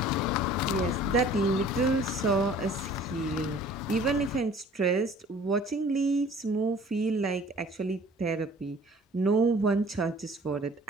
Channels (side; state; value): both; normal; correlation 0.50